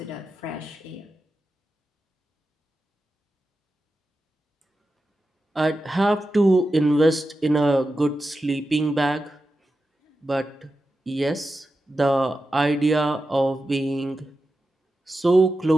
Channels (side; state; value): both; normal; correlation 0.91